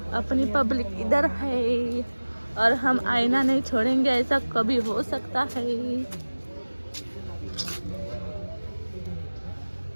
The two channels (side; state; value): both; inverted; correlation -1.00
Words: है और हम आईना नहीं छोड़ेंगे, ऐसा कभी हो सकता है.